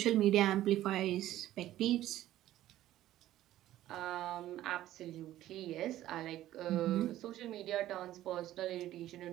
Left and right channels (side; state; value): left; quieter; 13.9 dB